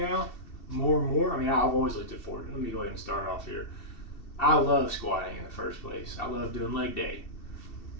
more and more. I've always looked forward. Let me go ahead and start off here. I love squatting in the first place. I love doing leg day.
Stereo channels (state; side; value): late; right; 2.7 ms